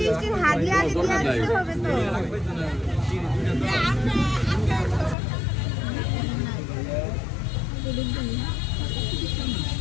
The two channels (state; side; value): drops out; right; at 5.2 s